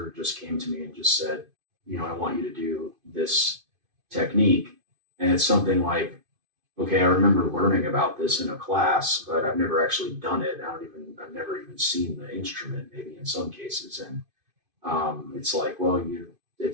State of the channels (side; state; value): left; late; 2.5 ms